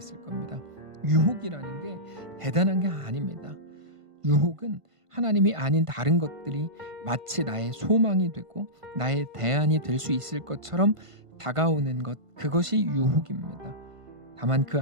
겁니다. 유혹이라는 게 대단한 게 아닙니다. 유혹은 하나님이 아닌 다른 것들이 마치 나의 소망이 되고 나의 대안이 될 수 있을 것처럼 다가오는 것, 그것이 유혹입니다. 다만 그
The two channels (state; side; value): late; left; 1.5 ms